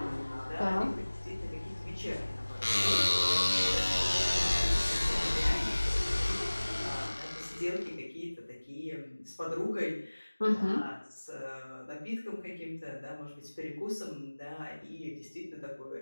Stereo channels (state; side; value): inverted; both; correlation -1.00